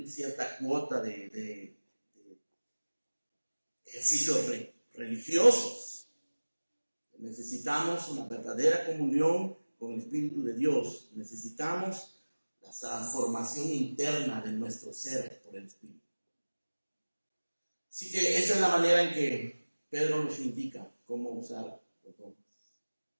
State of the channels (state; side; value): inverted; both; correlation -1.00